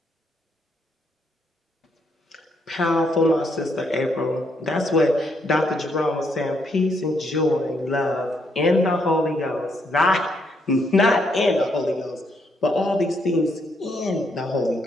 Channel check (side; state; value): both; normal; correlation 0.74